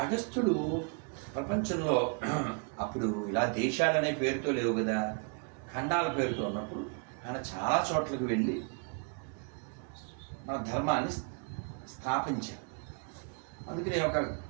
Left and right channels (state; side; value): quieter; left; 37.7 dB